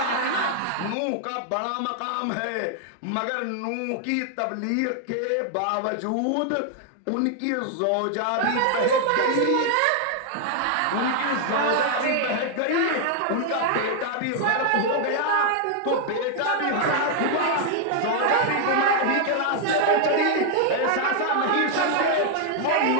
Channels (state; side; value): different; both; correlation 0.00